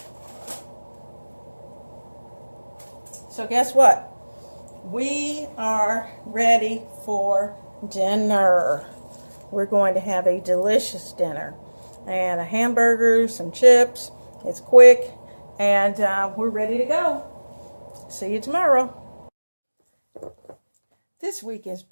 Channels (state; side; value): inverted; both; correlation -1.00